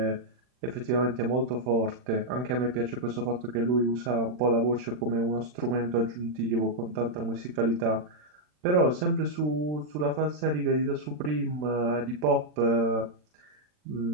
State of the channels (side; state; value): left; late; 40 ms